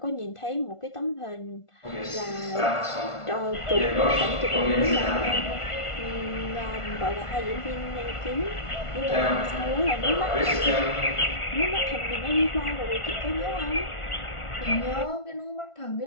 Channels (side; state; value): right; late; 1.5 ms